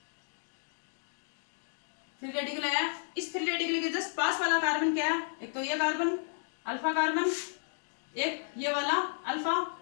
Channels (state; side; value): silent; right; digital silence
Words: फ्री रेडिकल आया। इस फ्री रेडिकल के जस्ट पास वाला कार्बन क्या है, एक तो ये कार्बन अल्फा कार्बन, एक ये वाला अल्फा